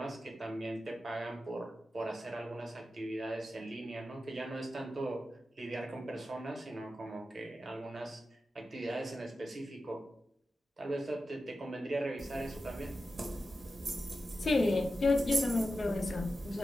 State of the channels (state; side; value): normal; both; correlation 0.92